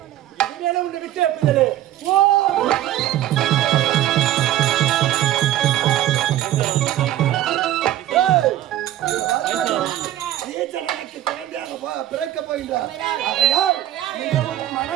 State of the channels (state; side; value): quieter; left; 13.1 dB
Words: இனிமேலும் உன்னை விட்டு வைப்பதில்லை. ஓ பிறக்க போகின்றார்.